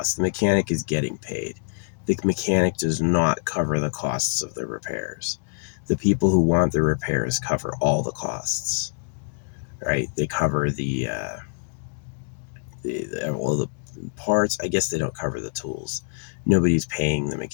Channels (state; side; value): silent; right; digital silence